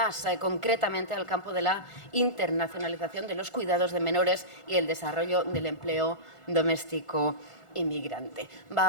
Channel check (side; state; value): right; late; 1.5 ms